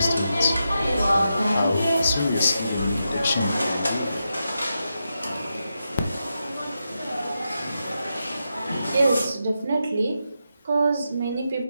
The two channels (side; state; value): both; inverted; correlation -0.87